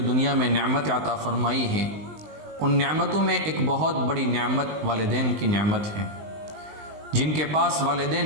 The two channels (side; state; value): left; late; 20 ms